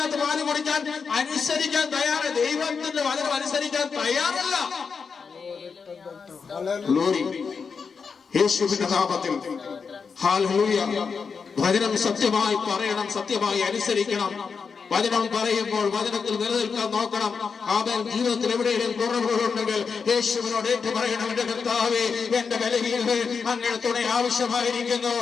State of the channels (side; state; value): right; quieter; 5.6 dB